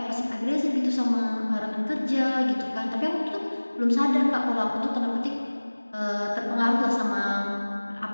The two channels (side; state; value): both; inverted; correlation -1.00